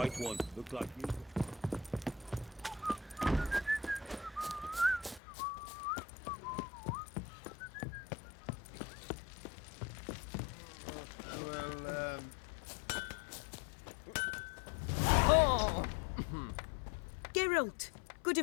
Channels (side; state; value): right; drops out; at 5.2 s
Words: one. Look like you. Well, Oh! Geralt, good